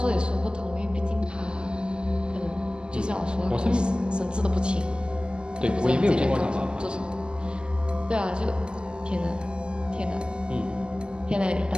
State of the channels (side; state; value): left; late; 0.048 ms